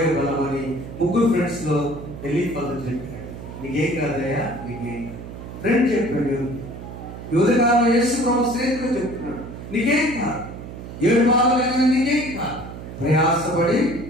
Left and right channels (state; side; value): noise; right; hum, 11 dB below the sound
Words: బలమని. 3 ఫ్రెండ్స్ లో ఎలీఫజు చెప్పాడు, నీకేం కాదయ్యా, నీకేం కాదు. ఫ్రెండ్ చెప్పాడు, యోధకాలం యేసు ప్రభు స్నేహితుడు చెప్తున్నాడు, నీకేం కాదు, 7 బాధలు నీకేం కాదు, ప్రయాసపడి